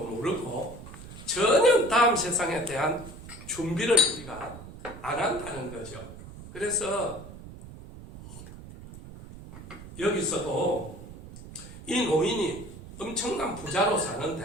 모르고 전혀 다음 세상에 대한 준비를 우리가 안 한다는 거죠. 그래서 여기서도 이 노인이 엄청난 부자로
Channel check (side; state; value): right; noise; rumble, 15 dB below the sound